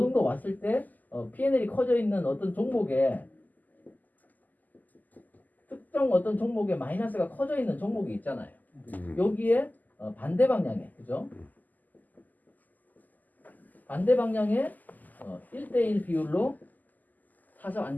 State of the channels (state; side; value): late; right; 0.083 ms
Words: 왔을 때 P&L이 커져 있는 어떤 종목에 특정 어떤 종목에 마이너스가 커져 있는 종목이 있잖아요. 여기에 반대 방향에 그죠? 반대 방향에 1대1 비율로 사서